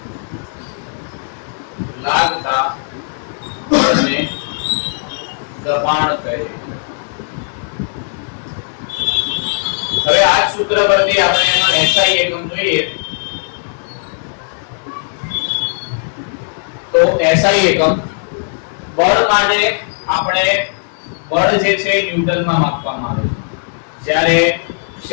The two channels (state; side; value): silent; right; digital silence